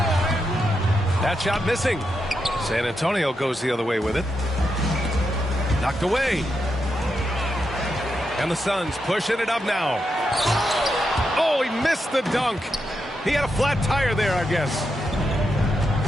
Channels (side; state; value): both; normal; correlation 0.85